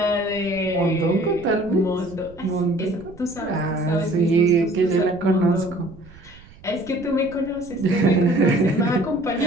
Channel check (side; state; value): right; noise; rumble, 21 dB below the sound